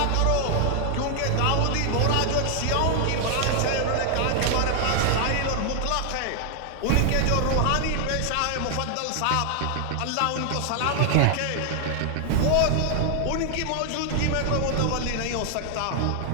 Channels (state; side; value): different; both; correlation 0.00